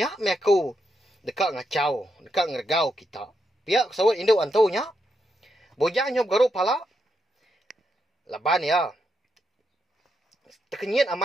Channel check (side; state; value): both; normal; correlation 0.82